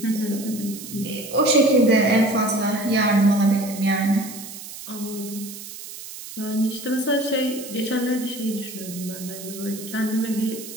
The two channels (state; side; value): noise; right; hiss, 12 dB below the sound